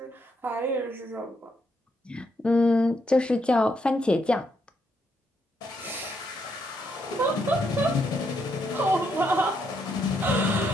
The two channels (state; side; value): normal; both; correlation 0.76